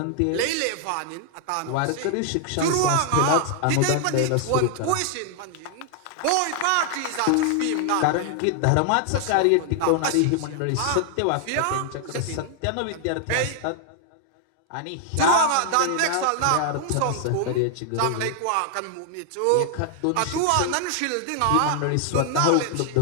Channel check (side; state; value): both; different; correlation 0.00